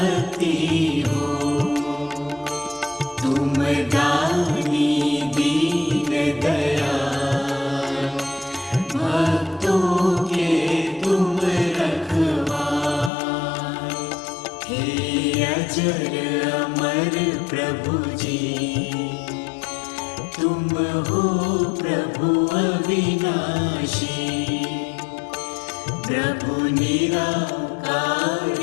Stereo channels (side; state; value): right; drops out; at 13.1 s